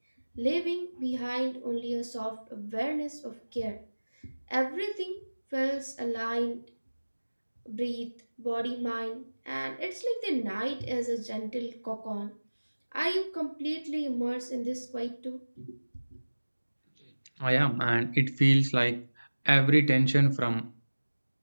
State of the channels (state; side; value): inverted; both; correlation -1.00